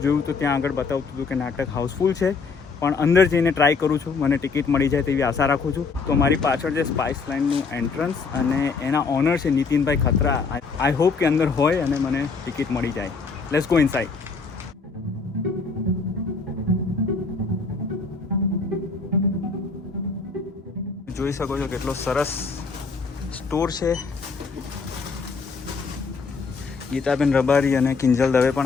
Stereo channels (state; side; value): quieter; right; 4.7 dB